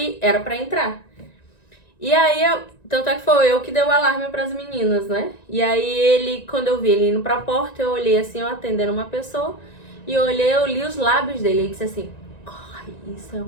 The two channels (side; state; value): right; late; 1.9 ms